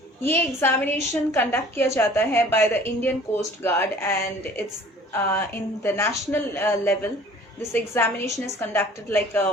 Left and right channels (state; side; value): normal; both; correlation 0.49